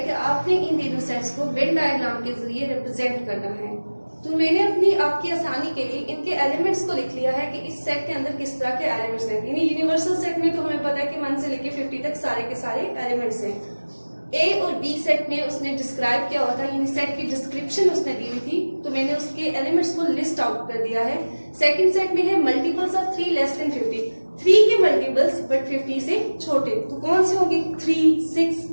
कि आपने इन तीनों सेट्स को वेन डायग्राम के जरिए रिप्रेजेंट करना है। तो मैंने आपकी आसानी के लिए इनके एलिमेंट्स को लिख लिया है कि इस सेट के अंदर किस तरह के एलिमेंट्स हैं। यानी यूनिवर्सल सेट में तो हमें पता है कि 1 से लेके 50 तक सारे के सारे एलिमेंट्स हैं। ए और बी सेट में उसने डिस्क्राइब किया हुआ था, यानी सेट की डिस्क्रिप्शन उसने दी हुई थी, तो मैंने उसके एलिमेंट्स को लिस्ट आउट कर दिया है। सेकंड सेट में है मल्टीपल्स ऑफ 3 लेस देन 50, 3 के मल्टीपल्स बट 50 से छोटे, तो कौन से होंगे? 3, 6,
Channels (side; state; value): both; inverted; correlation -1.00